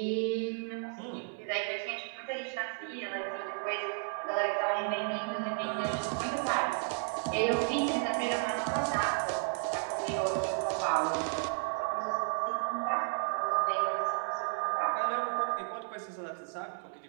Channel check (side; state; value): left; silent; 56 dB below the other